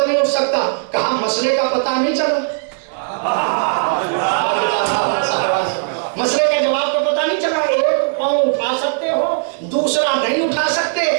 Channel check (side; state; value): left; silent; digital silence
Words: نہیں اٹھ سکتا. کہا مسئلے کا پتہ نہیں چلا, مسئلے کے جواب کا پتہ نہیں چلا. ایک پاؤں اٹھا سکتے ہو, دوسرا نہیں اٹھا سکتے.